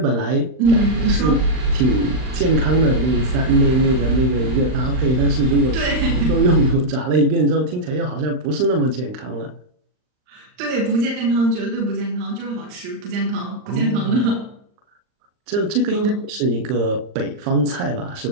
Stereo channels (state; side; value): late; left; 39 ms